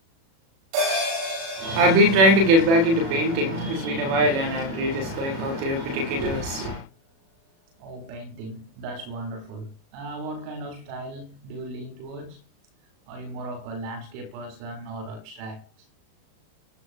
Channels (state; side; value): late; left; 36 ms